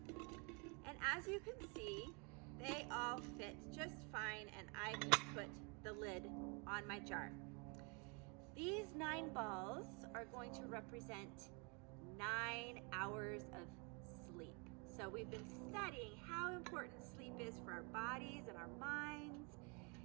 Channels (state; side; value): quieter; left; 32.9 dB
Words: And as you can see, they all fit just fine, and I can put the lid on my jar. These 9 balls are going to represent 9 hours of sleep. So we've been studying how important sleep is for our bodies and our minds